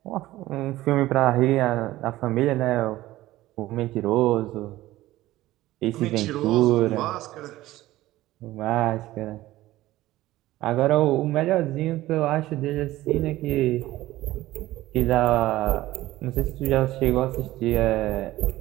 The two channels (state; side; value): quieter; left; 16.3 dB